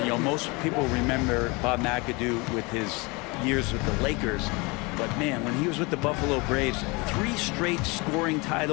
You know, most people remember Bob McAdoo with his years with the Lakers. But man, when he was with the Buffalo Braves, 3 straight scoring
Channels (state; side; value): quieter; right; 26.9 dB